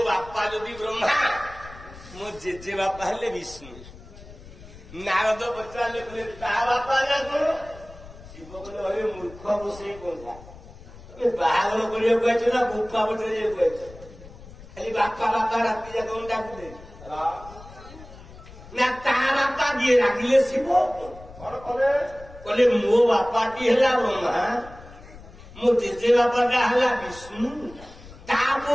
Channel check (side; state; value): left; noise; rumble, 18 dB below the sound